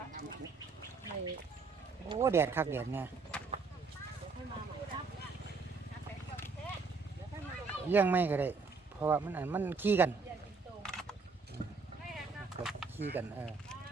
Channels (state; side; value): quieter; left; 4.5 dB